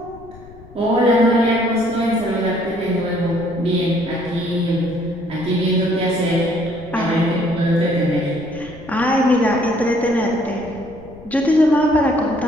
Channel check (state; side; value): noise; left; rumble, 20 dB below the sound